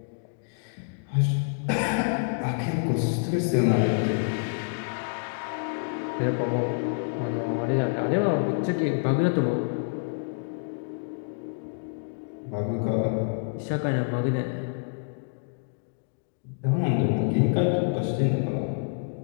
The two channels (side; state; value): right; silent; digital silence